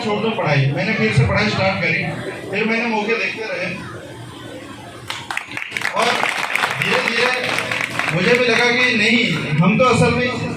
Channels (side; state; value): both; identical; correlation 1.00